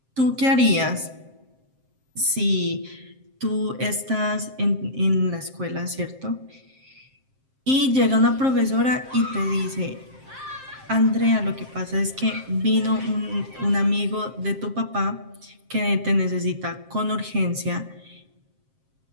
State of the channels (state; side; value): late; left; 7.6 ms